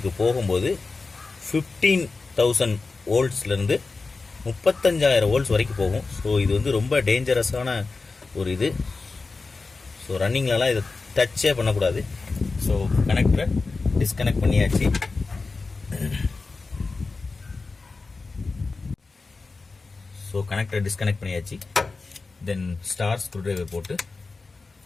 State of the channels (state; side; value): quieter; right; 4.0 dB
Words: போகும்போது 15,000 வோல்ட்ஸ்லேருந்து 35,000 வோல்ட்ஸ் வரைக்கும் போகும். ஸோ இது வந்து ரொம்ப டேஞ்சரஸான ஒரு இது. ஸோ ரன்னிங்லலாம் இதை டச்சே பண்ணக்கூடாது. ஸோ கனெக்டரை டிஸ்கனெக்ட் பண்ணியாச்சு. ஸோ கனெக்டரை டிஸ்கனெக்ட் பண்ணியாச்சு. தென் ஸ்டார் ஸ்க்ரூ டிரைவர் போட்டு